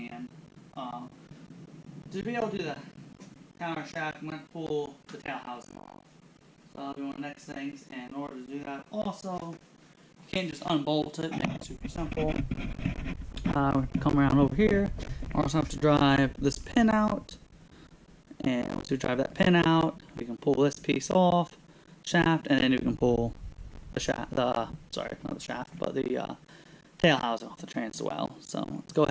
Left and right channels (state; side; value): identical; both; correlation 1.00